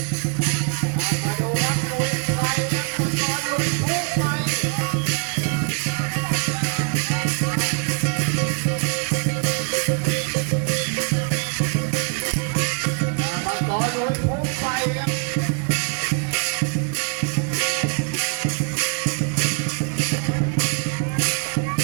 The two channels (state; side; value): quieter; left; 36.7 dB